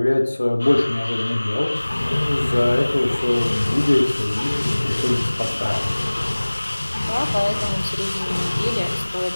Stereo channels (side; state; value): both; inverted; correlation -1.00